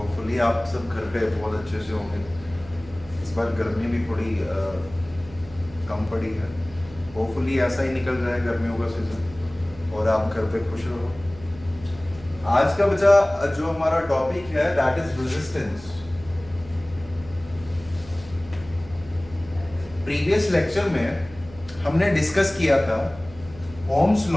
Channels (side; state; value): right; noise; hum, 19 dB below the sound